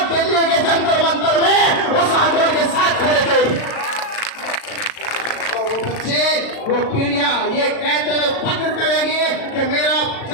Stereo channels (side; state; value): right; late; 36 ms